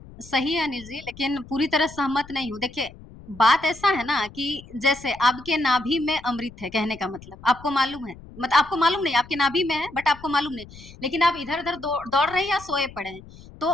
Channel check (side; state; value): left; noise; rumble, 19 dB below the sound